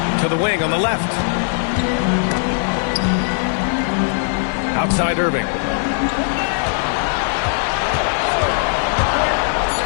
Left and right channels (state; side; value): silent; right; 58 dB below the other